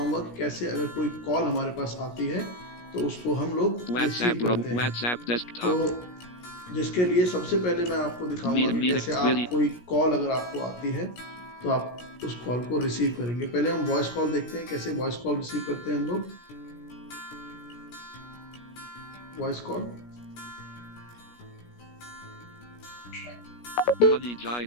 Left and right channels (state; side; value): late; right; 17 ms